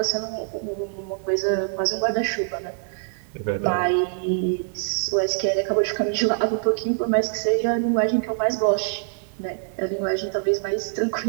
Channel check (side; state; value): left; silent; digital silence